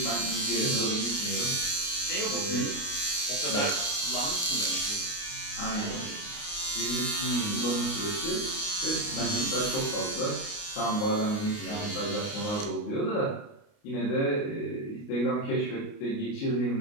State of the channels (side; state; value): right; late; 29 ms